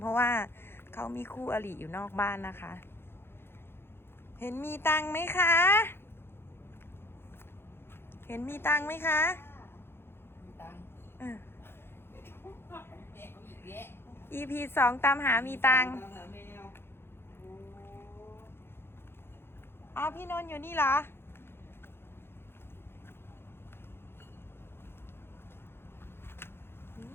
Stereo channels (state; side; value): late; right; 0.11 ms